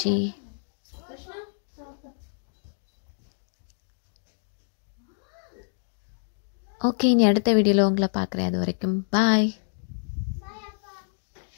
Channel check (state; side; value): silent; right; 60 dB below the other